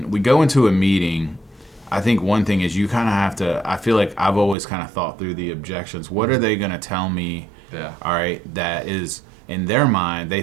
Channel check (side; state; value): left; drops out; at 4.5 s